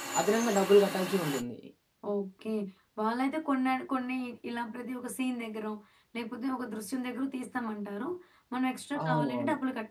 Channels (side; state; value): both; identical; correlation 1.00